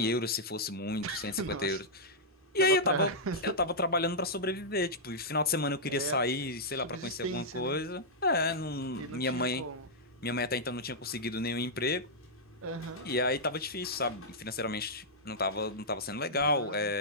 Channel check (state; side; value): normal; both; correlation -0.08